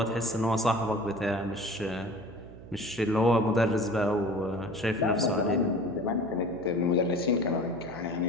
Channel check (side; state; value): right; noise; hum, 16 dB below the sound